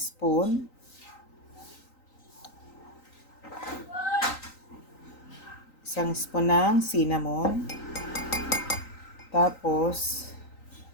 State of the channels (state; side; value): late; right; 3.9 ms